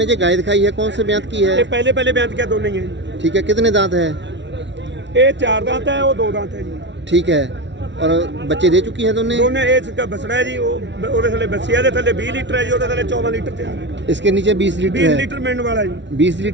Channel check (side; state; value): left; late; 0.52 ms